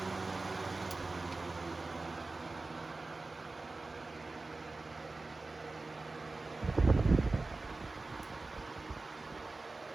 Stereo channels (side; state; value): left; quieter; 3.4 dB